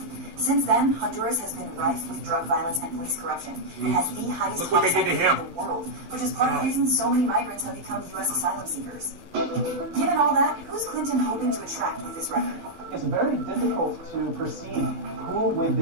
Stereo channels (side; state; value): left; late; 12 ms